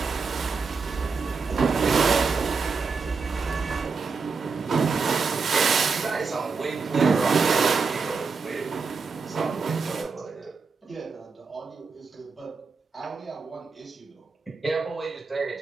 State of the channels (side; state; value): left; quieter; 4.8 dB